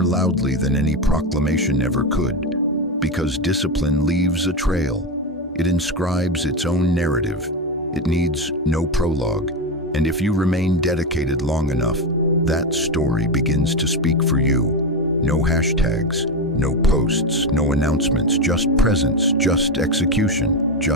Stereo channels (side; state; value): both; normal; correlation 0.13